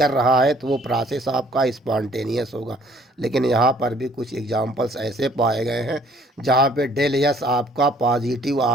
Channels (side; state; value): both; normal; correlation 0.59